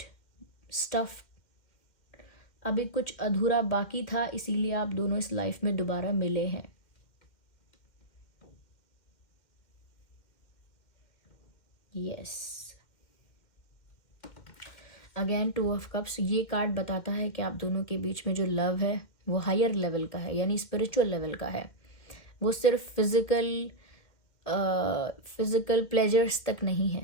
stuff. अभी कुछ अधूरा बाकी था, इसीलिए आप दोनों इस लाइफ में दोबारा मिले हैं. Yes, again 2 of cups. ये कार्ड बताता है कि आप दोनों के बीच में जो लव है वो हायर लेवल का है, यानी स्पिरिचुअल लेवल का है. वो सिर्फ फिजिकल प्लेजर्स तक नहीं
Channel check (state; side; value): late; right; 2.1 ms